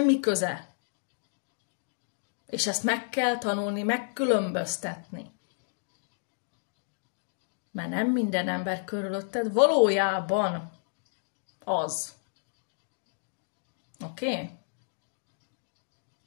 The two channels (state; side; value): silent; right; digital silence